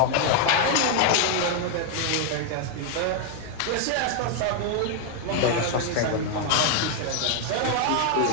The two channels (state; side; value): different; both; correlation 0.00